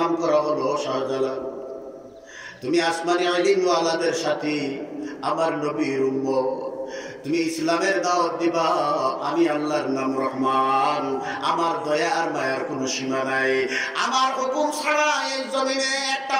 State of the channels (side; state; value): both; identical; correlation 1.00